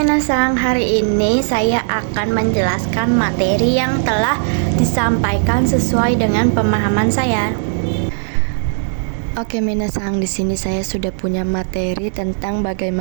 hari ini saya akan menjelaskan materi yang telah disampaikan sesuai dengan pemahaman saya. Oke minasang, di sini saya sudah punya materi tentang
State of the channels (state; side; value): silent; left; digital silence